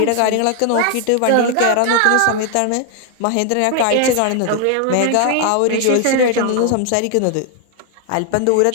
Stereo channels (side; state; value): both; different; correlation 0.00